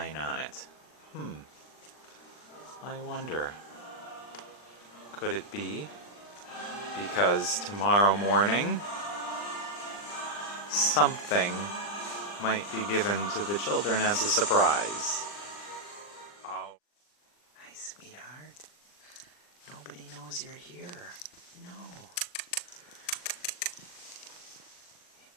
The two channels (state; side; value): late; right; 39 ms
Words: on it? I wonder. Could it be because tomorrow morning something might be given to the children as a surprise? Oh. Hi, sweetheart. Nobody knows you're here. No.